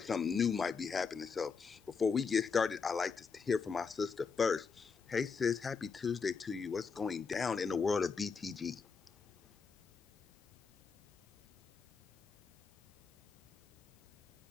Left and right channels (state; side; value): quieter; right; 5.4 dB